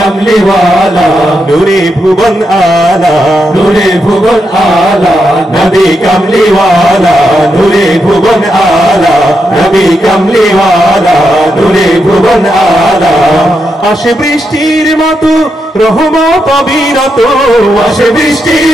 ওয়ালা, নূরে ভুবন আলা, নূরে ভুবন আলা, নবী কমলি ওয়ালা, নূরে ভুবন আলা, নবী কমলি ওয়ালা, নূরে ভুবন আলা। আসে বৃষ্টির মতো রহমত অবিরত, আসে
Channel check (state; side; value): normal; both; correlation 0.84